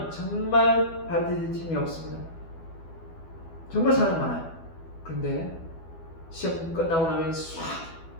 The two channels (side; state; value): right; late; 12 ms